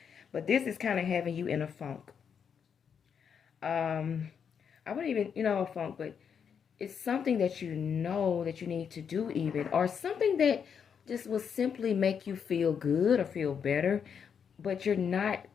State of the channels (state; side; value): quieter; right; 7.2 dB